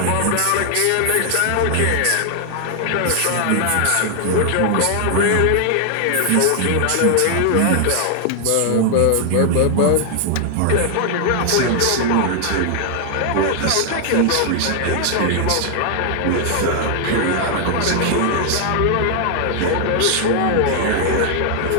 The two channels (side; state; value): both; different; correlation 0.00